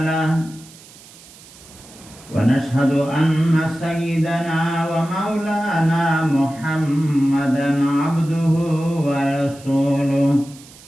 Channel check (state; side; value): noise; right; hiss, 22 dB below the sound